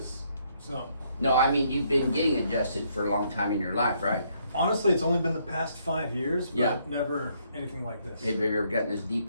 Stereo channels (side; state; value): both; inverted; correlation -0.71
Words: so. No, I mean you've been getting adjusted for a long time in your life, right? Honestly, it's only been the past 5 years, but Yeah. never anything like this. Have you ever gotten as deep